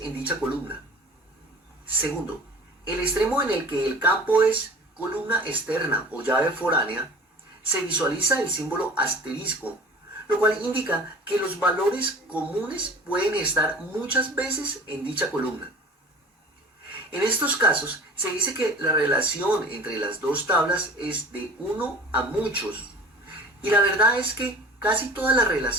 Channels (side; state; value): both; normal; correlation 0.42